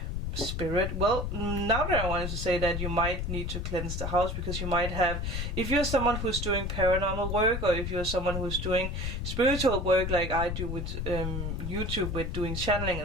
spirit. Well, now that I wanted to say that, you might need to cleanse the house, because you might have, if you're someone who's doing paranormal work, or if you're someone who's doing spiritual work like I do with YouTube, with doing channeling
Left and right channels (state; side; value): noise; left; rumble, 3 dB below the sound